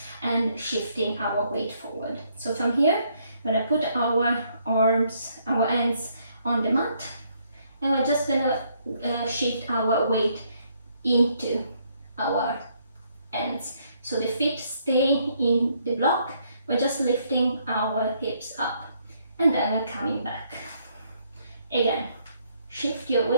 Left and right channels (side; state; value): both; inverted; correlation -0.70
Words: and shifting our weight forward. So from here, we're gonna put our hands on the mat, and we're just gonna shift our weight into our hands. So the feet stay in the block, we're just lifting our hips up, and then we're coming back. Again, shift your